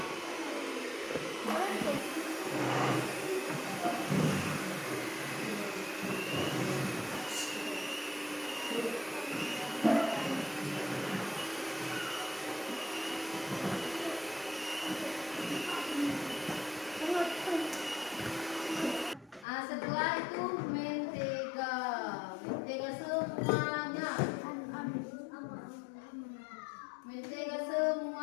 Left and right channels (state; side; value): drops out; right; at 19.5 s